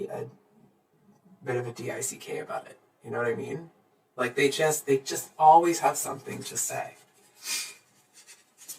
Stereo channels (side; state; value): both; identical; correlation 1.00